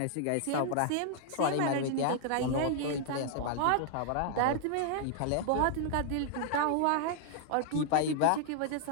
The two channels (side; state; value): both; different; correlation 0.00